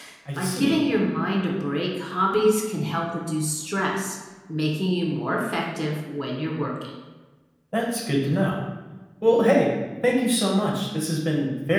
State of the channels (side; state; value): both; identical; correlation 1.00